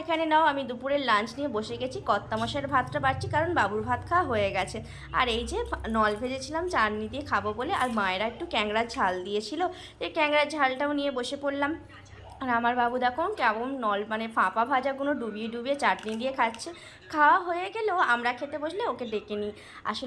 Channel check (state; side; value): identical; both; correlation 1.00